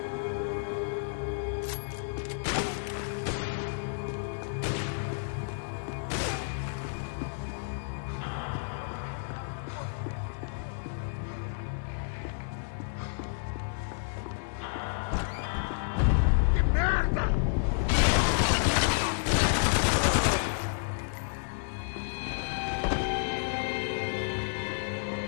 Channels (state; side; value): silent; right; digital silence